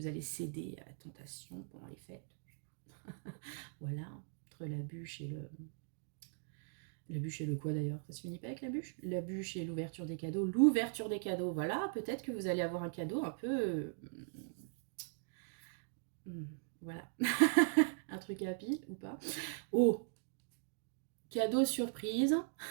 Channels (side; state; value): left; silent; digital silence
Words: allez céder à la tentation pendant les fêtes. Voilà, entre la bûche et le... La bûche et le quoi d'ailleurs? Ça se finit pas avec la bûche? La bûche et l'ouverture des cadeaux. L'ouverture des cadeaux, voilà, peut-être que vous allez avoir un cadeau un peu... voilà. truc à pile ou pas. Oh, cadeau surprise,